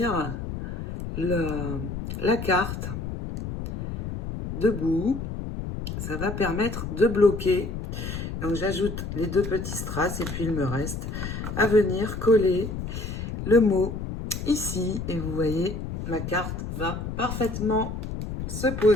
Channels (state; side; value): noise; left; rumble, 6 dB below the sound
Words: la carte debout. Ça va permettre de bloquer. Donc j'ajoute les deux petits strass et puis il me reste à venir coller le mot ici. Et vous voyez, ma carte va parfaitement se